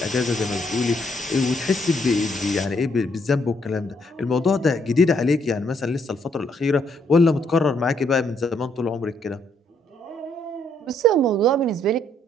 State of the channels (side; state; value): both; normal; correlation 0.71